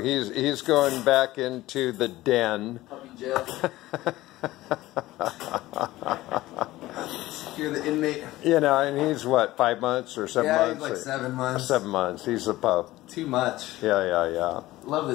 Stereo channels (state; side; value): quieter; right; 17.1 dB